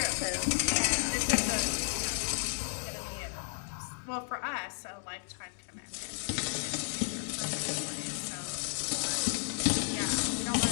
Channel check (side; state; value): right; silent; 55 dB below the other